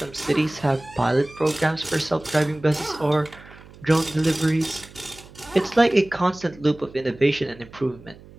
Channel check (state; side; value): noise; right; hum, 21 dB below the sound